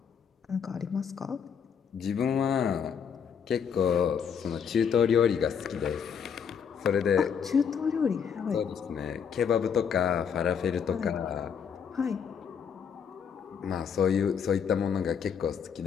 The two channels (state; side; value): quieter; right; 7.2 dB